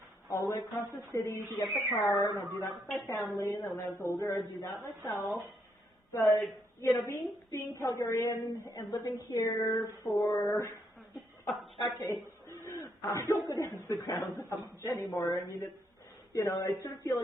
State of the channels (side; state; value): both; normal; correlation 0.75